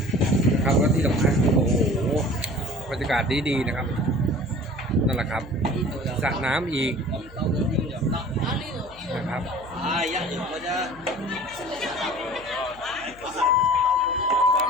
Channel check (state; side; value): noise; left; hum, 23 dB below the sound